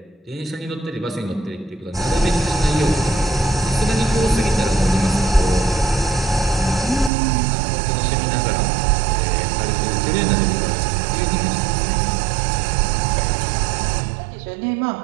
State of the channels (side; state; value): left; drops out; at 7.1 s